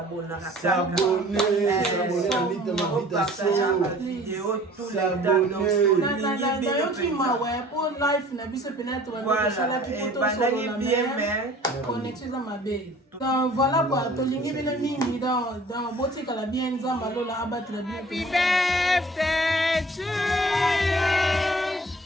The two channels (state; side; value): normal; both; correlation 0.50